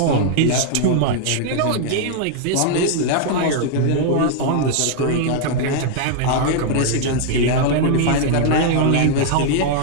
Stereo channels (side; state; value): both; different; correlation 0.00